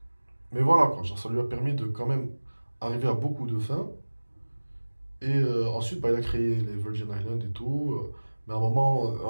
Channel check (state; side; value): inverted; both; correlation -1.00